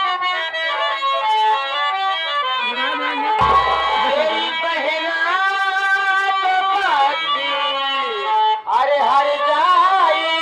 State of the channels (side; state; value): both; identical; correlation 1.00